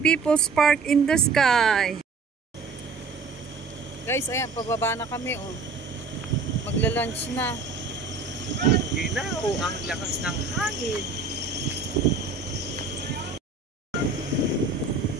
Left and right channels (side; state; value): left; quieter; 4.3 dB